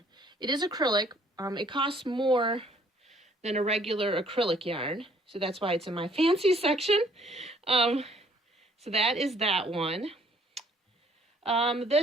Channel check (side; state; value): both; normal; correlation 0.61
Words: It is acrylic. It costs more than a regular acrylic yarn. So that's why it's in my fancy section. So that is that one.